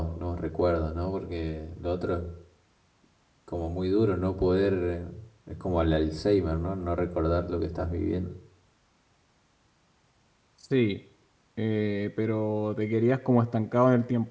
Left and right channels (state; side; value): identical; both; correlation 1.00